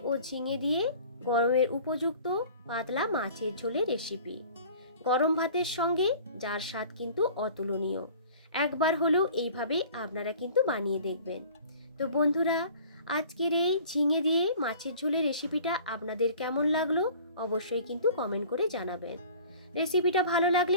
ও ঝিঙে দিয়ে গরমের উপযুক্ত পাতলা মাছের ঝোলের রেসিপি। গরম ভাতের সঙ্গে যার স্বাদ কিন্তু অতুলনীয়। একবার হলেও এইভাবে আপনারা কিন্তু বানিয়ে দেখবেন। তো বন্ধুরা, আজকের এই ঝিঙে দিয়ে মাছের ঝোলের রেসিপিটা আপনাদের কেমন লাগলো অবশ্যই কিন্তু কমেন্ট করে জানাবেন। রেসিপিটা ভালো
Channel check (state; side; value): inverted; both; correlation -0.47